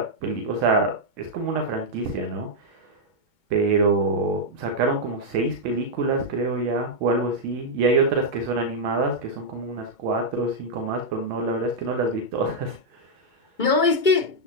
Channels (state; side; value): late; right; 2.2 ms